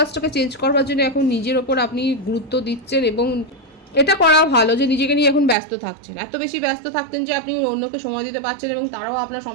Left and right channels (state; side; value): drops out; left; at 5.6 s